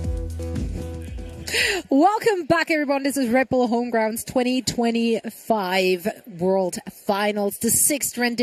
Welcome back, everyone. This is Red Bull Homegrounds 2025 World Finals, the 6th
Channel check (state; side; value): identical; both; correlation 1.00